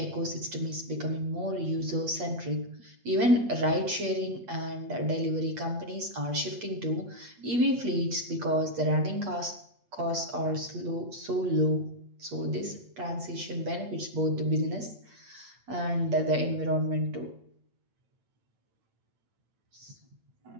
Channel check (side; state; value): left; late; 8.5 ms